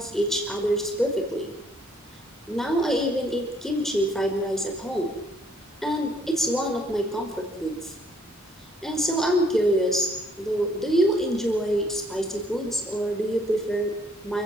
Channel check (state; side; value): normal; both; correlation 0.65